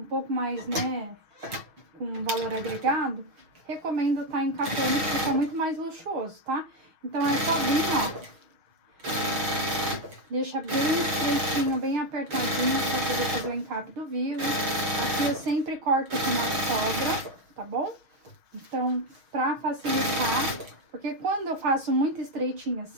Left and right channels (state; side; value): late; left; 6.3 ms